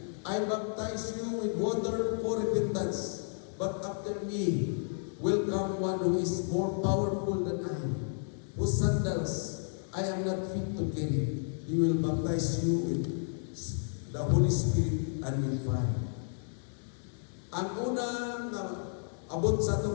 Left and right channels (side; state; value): right; silent; digital silence